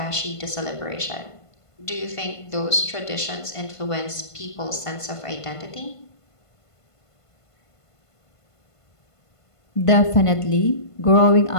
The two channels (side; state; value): right; late; 1.5 ms